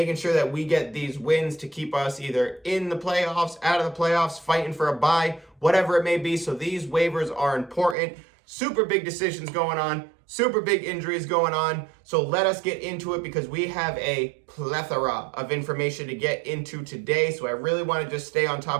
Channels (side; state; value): left; drops out; at 8.0 s